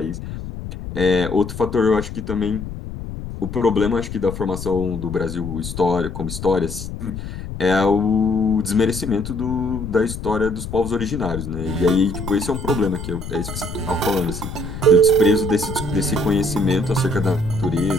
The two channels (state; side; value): noise; left; rumble, 8 dB below the sound